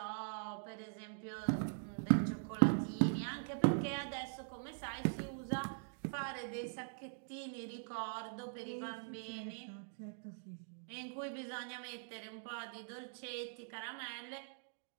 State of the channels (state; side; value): silent; left; digital silence